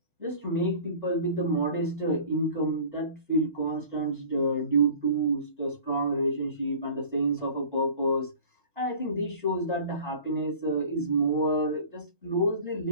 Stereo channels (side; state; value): both; inverted; correlation -0.43